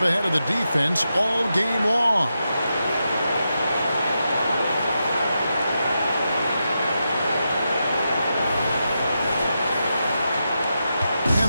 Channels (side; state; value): both; inverted; correlation -0.87